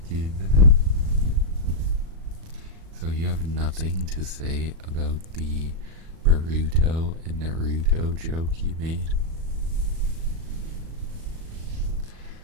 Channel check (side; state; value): left; late; 37 ms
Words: So you have nothing to say about the Boruto and Naruto joke you made?